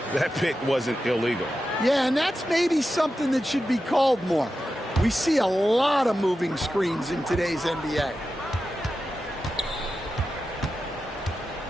that pick wasn't illegal. Yeah, and that's maybe something that should be called more. We see a lot of moving screens in today's NBA.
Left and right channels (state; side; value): normal; both; correlation 0.91